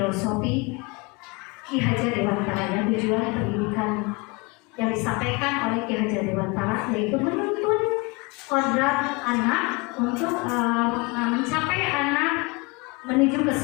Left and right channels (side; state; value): right; quieter; 27.5 dB